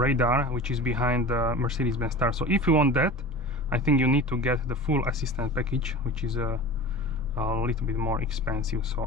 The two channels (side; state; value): both; normal; correlation 0.35